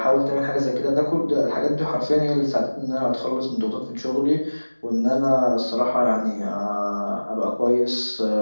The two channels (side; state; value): both; inverted; correlation -1.00